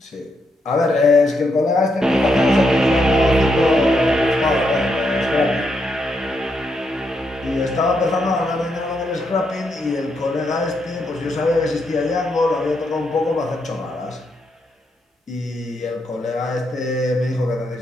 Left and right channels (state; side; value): normal; both; correlation 0.80